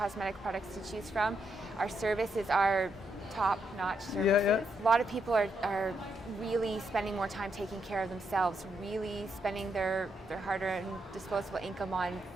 products to choose from. Our services are top-notch services. A lot of people are really spending more time taking care of themselves, really spending their hard-earned disposable income on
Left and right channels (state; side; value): normal; both; correlation 0.79